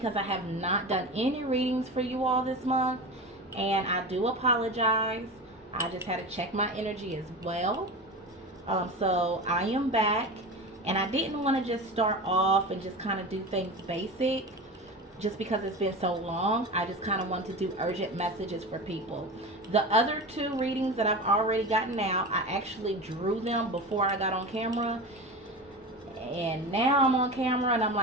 I have not done any readings for you all this month, and I do apologize. I just had to check my energy as well. So I am back, and I didn't want to just start off and just kind of do things basic just because it's been so long. I just kind of want to do urgent messages for people. The other two readings that I've already gotten out, I actually drew them before I got on camera, and now I'm on camera and I'm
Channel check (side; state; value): both; normal; correlation 0.28